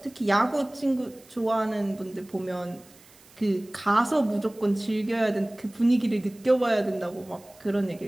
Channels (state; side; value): noise; right; hiss, 26 dB below the sound